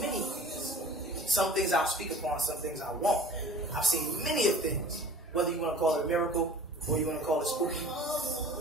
things. Some things I'll speak upon, some things I won't. I've seen many of things. Whether you want to call it a miracle or you want to call it spooky.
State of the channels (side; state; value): both; normal; correlation 0.46